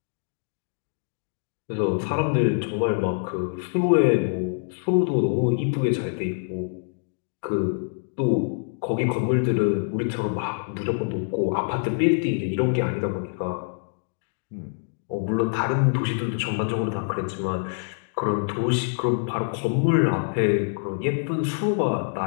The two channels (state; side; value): silent; right; digital silence